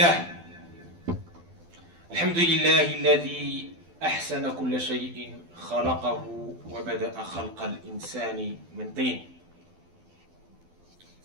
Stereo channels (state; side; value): late; left; 12 ms